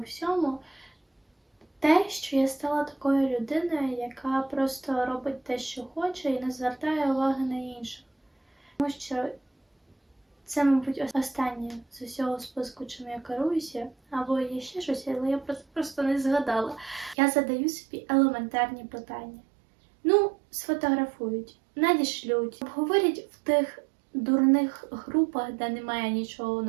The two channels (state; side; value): drops out; left; at 17.2 s